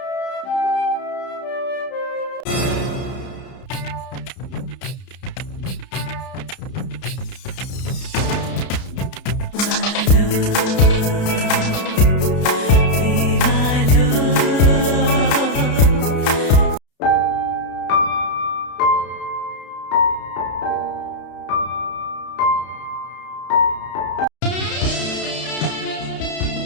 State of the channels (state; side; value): late; right; 32 ms